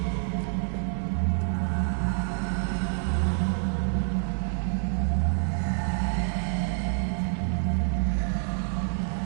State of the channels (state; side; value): silent; left; 60 dB below the other